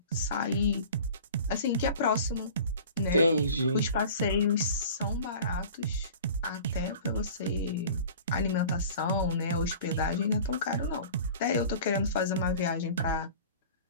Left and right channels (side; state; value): both; inverted; correlation -0.41